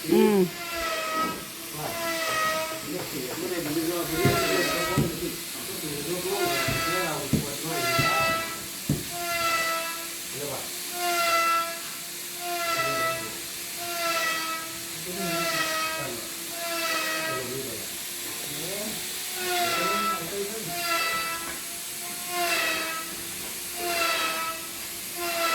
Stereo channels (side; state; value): both; identical; correlation 1.00